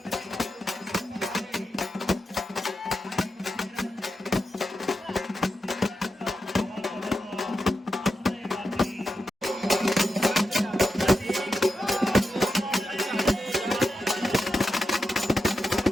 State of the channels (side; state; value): both; normal; correlation 0.88